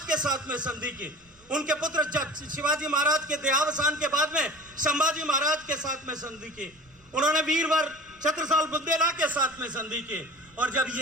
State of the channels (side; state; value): right; noise; rumble, 30 dB below the sound